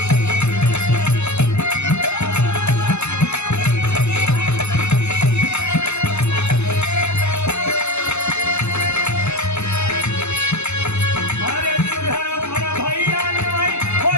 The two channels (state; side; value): late; right; 0.81 ms